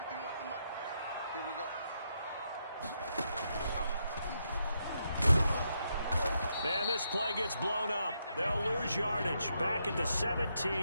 Here we go. And this play gets blown up. They'll lose yardage. Back at the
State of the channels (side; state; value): both; inverted; correlation -0.80